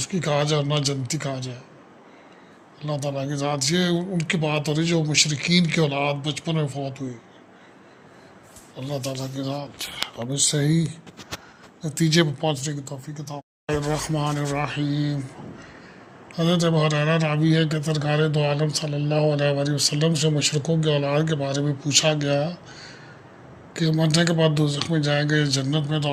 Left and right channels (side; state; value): both; identical; correlation 1.00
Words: کہا جائے اور نہ جنتی کہا جائے۔ اللہ تعالیٰ کی ذات یہ ان کی بات ہو رہی جو مشرکین کی اولاد بچپن میں فوت ہوئی۔ اللہ تعالیٰ کی ذات اب اس صحیح نتیجے پر پہنچنے کی توفیق عطا فرمائے۔ الرحمن الرحیم۔ حضرت ابو ہریرہ راوی ہے کہ سرکار دو عالم صلی اللہ علیہ وآلہ وسلم سے مشرکوں کے اولاد کے بارے میں پوچھا گیا کہ مرنے کے بعد دوزخ میں جائیں گے جنت میں، تو